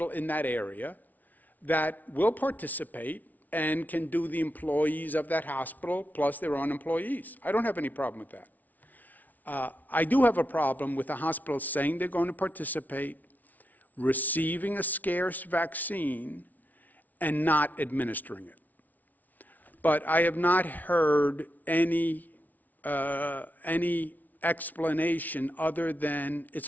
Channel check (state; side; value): late; right; 0.078 ms